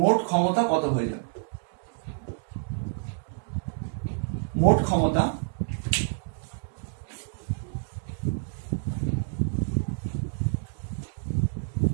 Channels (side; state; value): left; silent; digital silence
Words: মোট ক্ষমতা কত হয়ে যাবে, মোট ক্ষমতা